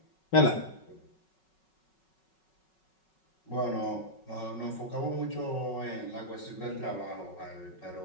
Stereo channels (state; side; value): late; right; 5.4 ms